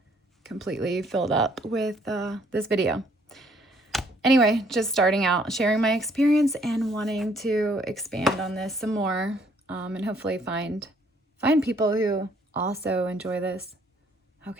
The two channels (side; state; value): both; normal; correlation 0.64